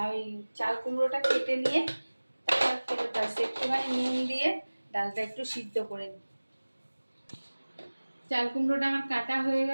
ওই চাল কুমড়োটা কেটে নিয়ে তারপর ফেরত আসছি, একটুখানি নুন দিয়ে ডালটা একটু সিদ্ধ করে নিই। চাল কুমড়োটা আমার কাটা হয়ে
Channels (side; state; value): both; inverted; correlation -1.00